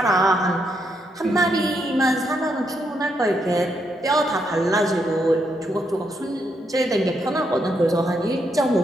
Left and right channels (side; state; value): both; normal; correlation 0.78